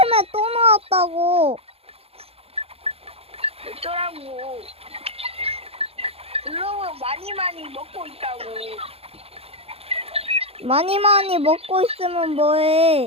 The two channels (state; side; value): late; left; 0.29 ms